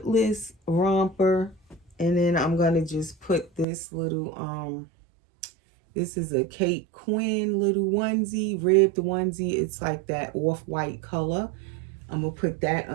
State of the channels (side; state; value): left; drops out; at 3.7 s